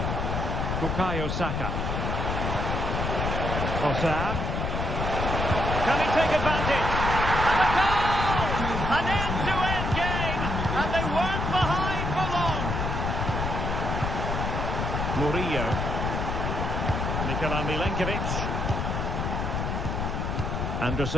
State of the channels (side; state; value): left; noise; rumble, 1 dB below the sound